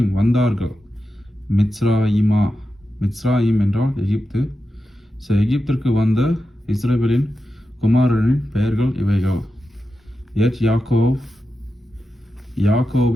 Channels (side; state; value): both; normal; correlation 0.90